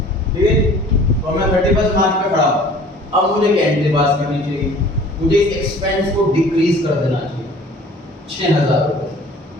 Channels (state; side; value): normal; both; correlation 0.49